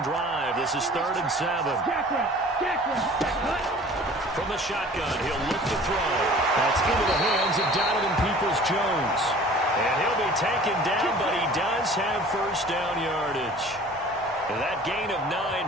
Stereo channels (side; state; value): both; normal; correlation 0.47